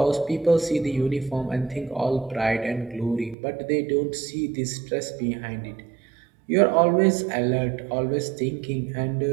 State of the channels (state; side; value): drops out; left; at 3.4 s